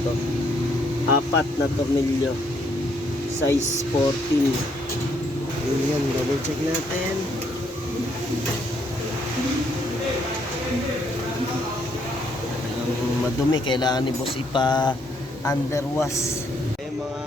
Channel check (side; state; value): both; normal; correlation 0.71